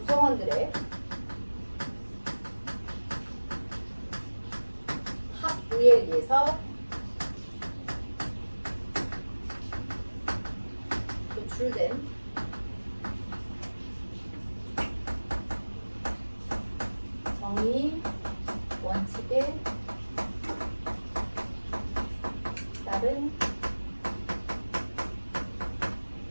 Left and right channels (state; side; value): inverted; both; correlation -1.00